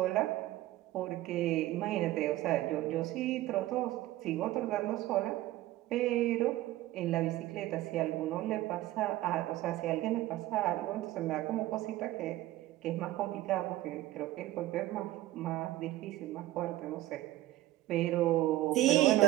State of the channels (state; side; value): quieter; left; 15.8 dB